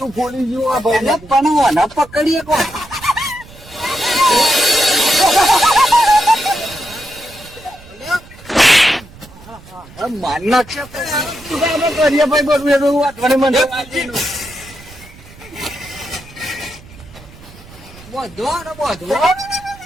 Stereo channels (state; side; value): noise; right; rumble, 21 dB below the sound